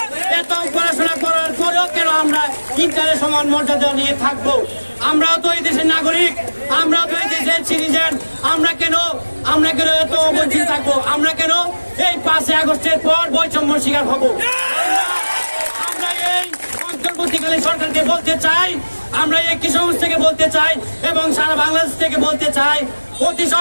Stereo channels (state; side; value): inverted; both; correlation -1.00